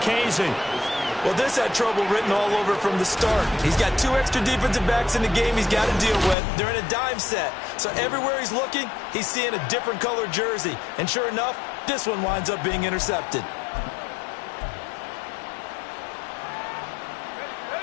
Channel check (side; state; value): right; drops out; at 6.4 s